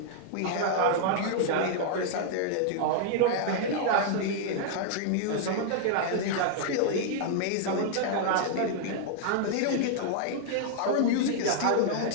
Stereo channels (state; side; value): different; both; correlation -0.01